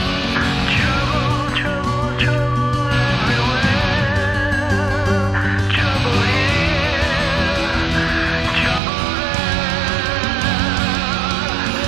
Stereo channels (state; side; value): drops out; left; at 8.8 s